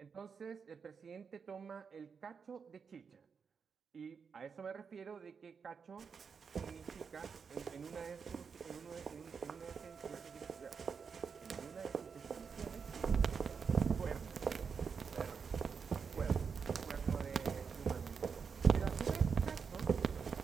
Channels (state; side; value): quieter; left; 6.0 dB